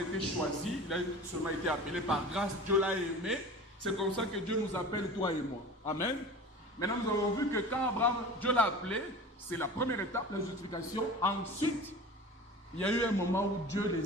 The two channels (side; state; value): both; normal; correlation 0.37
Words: été choisi, il a seulement été appelé par grâce, Dieu l'a aimé. C'est comme ça que Dieu nous appelle, toi et moi. Amen. Maintenant, nous avons vu que quand Abraham, Dieu l'a appelé, c'est la première étape, la justification. Ensuite, il y a eu un moment où Dieu